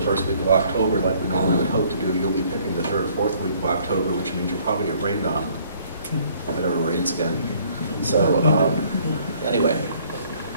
week of October like we normally would hope to do, you'll be picking the 3rd or 4th week of October, which means you'll probably get rained on if it ever rains again. So anyway.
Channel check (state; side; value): inverted; both; correlation -0.60